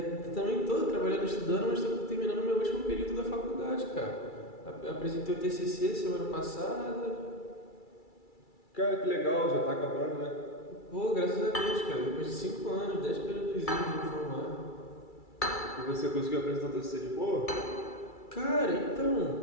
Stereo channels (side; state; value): right; late; 2.3 ms